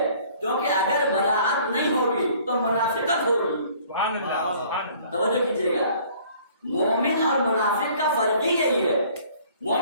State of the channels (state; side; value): inverted; both; correlation -0.55